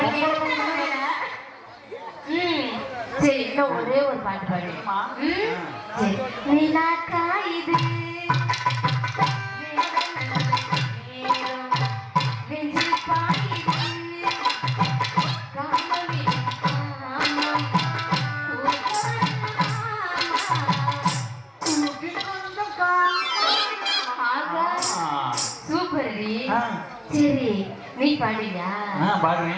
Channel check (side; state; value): both; identical; correlation 1.00